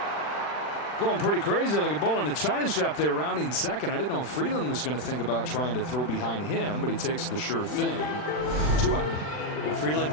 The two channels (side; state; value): right; late; 40 ms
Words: going pretty crazy like a bull in a china shop there, rounding second. I didn't know if Freeland was going to think about trying to throw behind him, but he takes the sure thing. 2 out. Well, Freeland